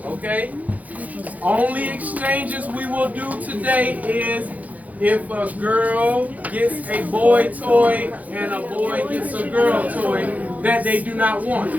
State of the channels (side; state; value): left; late; 0.076 ms